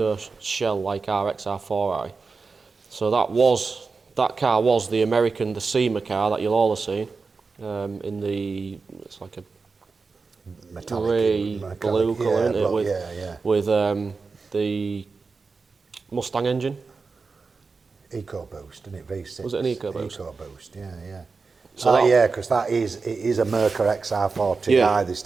shell like our XR4i. So that car was the American, the SEMA car that you'll all have seen. It's like a Metallic, grey blue colour, isn't it? With the Mustang engine. EcoBoost, isn't it? V6. Was it an EcoBoost? EcoBoost, yeah. So because it is a Merca XR40i they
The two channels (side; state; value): left; quieter; 4.5 dB